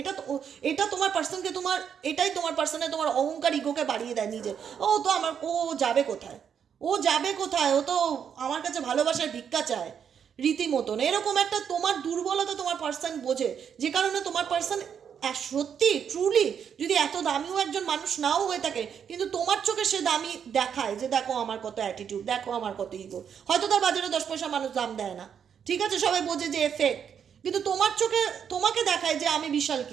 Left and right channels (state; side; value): quieter; left; 7.8 dB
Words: এটা তোমার পার্সনকে এটাই তোমার পার্সনে তোমার অহংকার, ইগোকে বাড়িয়ে দেয় নিজে। ও যাবে কোথায়, ও তো আমার কাছে ভালোবাসার ভিক্ষা চায় রীতিমতন, এরকম একটা তোমার দুর্বলতা তোমার পার্সন বোঝে, যে কারণে তোমার পার্সন সত্যি ট্রুলি যদি এত দামিও একজন মানুষ নাও হয়ে থাকে, কিন্তু তোমার চোখে সে দামি দেখায় যে দেখো আমার কত অ্যাটিটিউড, দেখো আমার কত ইগো। হয়তো তার বাজারে 10 পয়সা মানুষ দাম দেয় না, ঠিক আছে, সবাই বোঝে যে ফেক, কিন্তু তোমার চোখে তোমাকে দেখায় যে আমি বিশাল